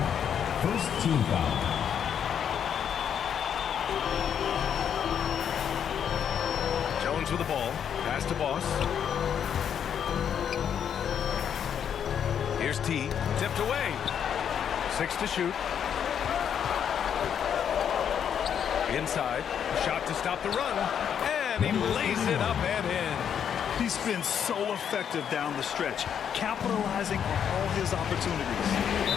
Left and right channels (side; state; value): right; quieter; 8.4 dB